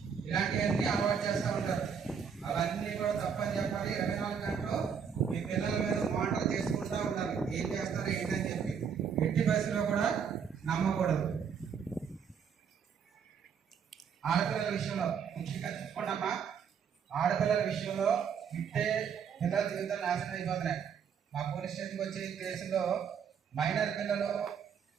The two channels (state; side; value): quieter; left; 7.0 dB